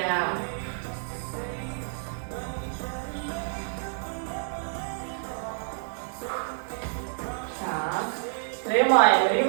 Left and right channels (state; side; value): silent; left; digital silence